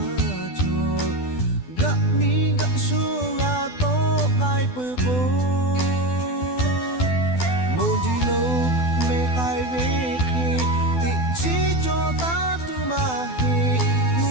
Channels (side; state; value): right; late; 12 ms